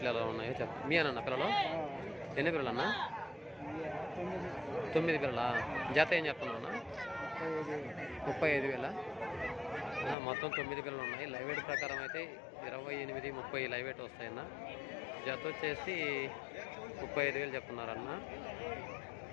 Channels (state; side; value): drops out; right; at 10.2 s